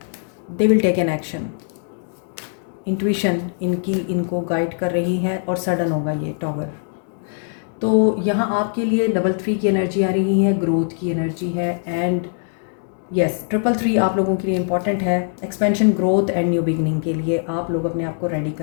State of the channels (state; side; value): silent; right; 65 dB below the other